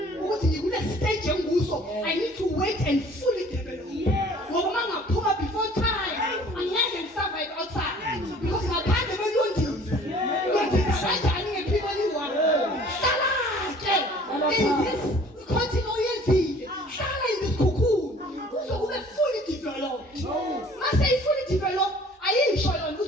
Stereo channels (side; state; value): both; normal; correlation 0.51